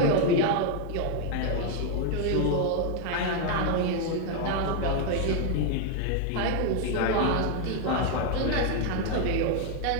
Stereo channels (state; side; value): different; both; correlation 0.01